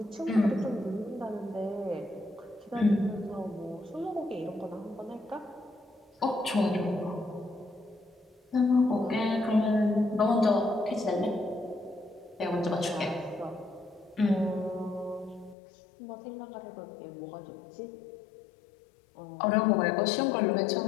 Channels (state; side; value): drops out; right; at 15.6 s